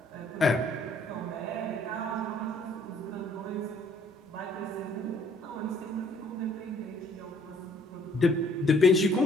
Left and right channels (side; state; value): both; normal; correlation 0.61